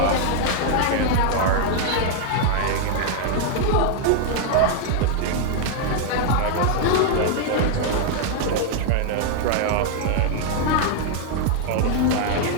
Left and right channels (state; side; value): different; both; correlation 0.00